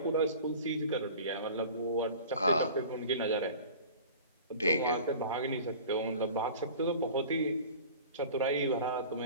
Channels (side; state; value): both; inverted; correlation -0.41